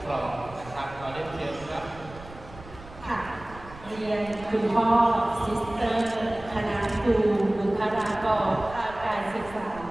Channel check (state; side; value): noise; right; rumble, 18 dB below the sound